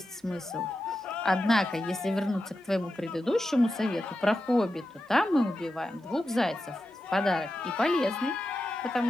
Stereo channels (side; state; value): both; normal; correlation 0.90